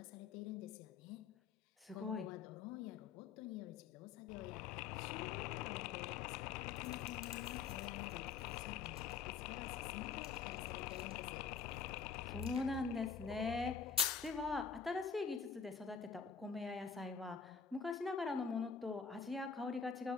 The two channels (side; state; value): right; quieter; 6.1 dB